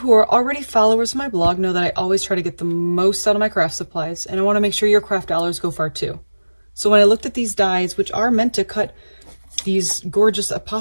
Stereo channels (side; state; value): both; inverted; correlation -1.00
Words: are already followers of my blog know that I always try to get the most out of my craft supplies, and I want to make sure your craft dollars go far too. So when I looked at these dies, which are meant to cut these gorgeous